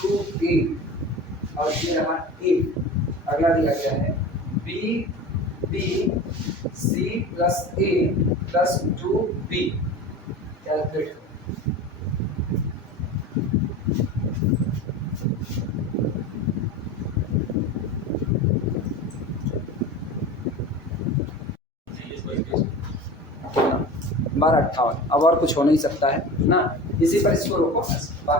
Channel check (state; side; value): normal; both; correlation 0.33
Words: और ये रहा a, अगला दिया गया है b c plus a plus 2b, calculate 1258। अब और कुछ हो नहीं सकता है ना, इसी पर इसको रोको,